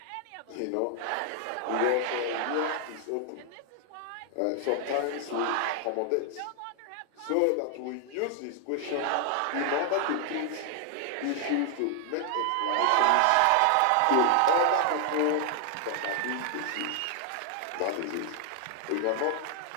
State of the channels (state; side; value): different; both; correlation 0.00